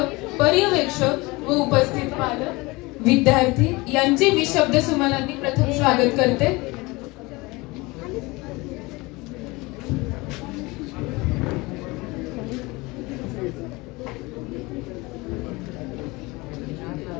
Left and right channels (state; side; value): quieter; right; 23.4 dB